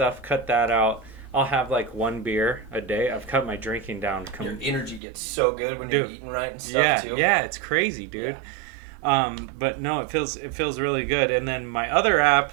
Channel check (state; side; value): drops out; left; at 5.0 s